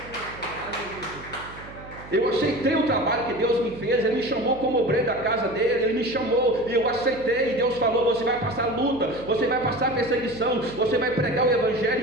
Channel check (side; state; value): right; noise; hum, 17 dB below the sound